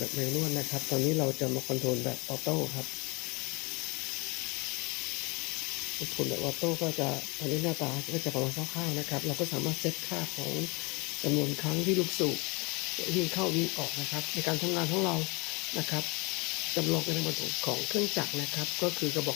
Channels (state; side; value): quieter; right; 28.0 dB